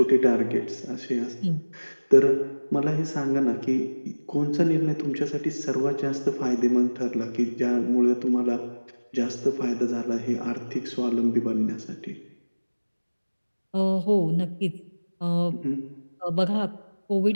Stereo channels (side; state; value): both; inverted; correlation -1.00